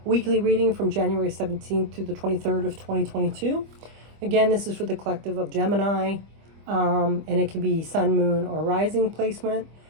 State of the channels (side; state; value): left; late; 25 ms